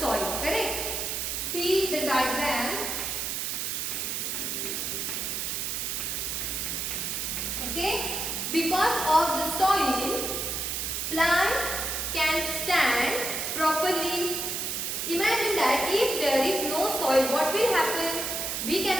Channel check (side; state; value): right; noise; hiss, 2 dB below the sound